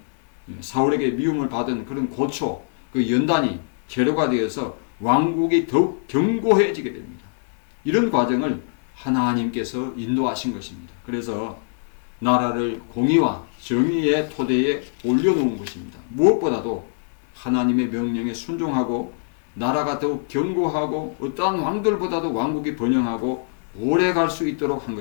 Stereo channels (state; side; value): silent; right; digital silence